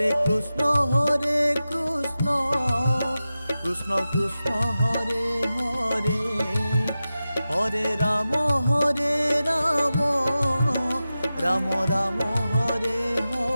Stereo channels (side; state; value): both; inverted; correlation -0.94